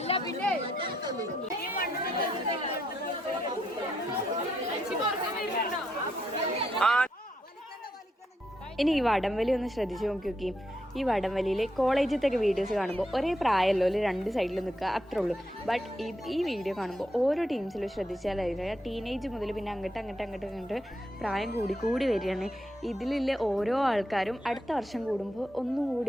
പിന്നെ ഇനി ഈ വടംവലി ഒന്ന് ശ്രദ്ധിച്ചു നോക്കി ഈ വടംവലിയിൽ കോളേജിലത്തൊക്കെ വീഡിയോസ് കാണുമ്പോൾ ഒരേ പ്രായമല്ലോ ഒരു രണ്ട് സൈഡിൽ നിൽക്കുക അത്രേ ഉള്ളൂ. ബട്ട് ഈ വീഡിയോ കാണുമ്പോൾ ഓരോ ടീംസിലും ശ്രദ്ധിച്ചാലായിരുന്നു ടീനേജ് മുതൽ പിന്നെ അങ്ങോട്ട് പ്രായം കൂടി വരികയാണ്. ഇതിലുള്ള ഓരോ ആൾക്കാരും അടുത്ത വർഷം കൂടുമ്പോൾ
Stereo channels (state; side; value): normal; both; correlation 0.79